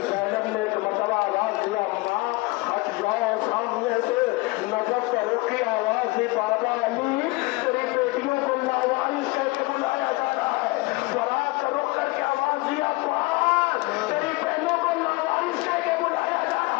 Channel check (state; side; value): quieter; right; 23.5 dB